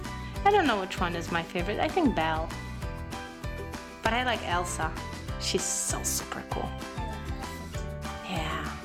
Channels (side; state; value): both; identical; correlation 1.00